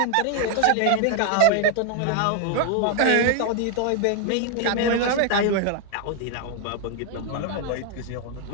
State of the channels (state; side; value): different; both; correlation 0.00